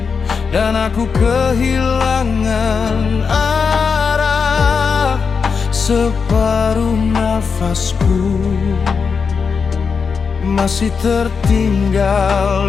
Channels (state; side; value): quieter; right; 5.6 dB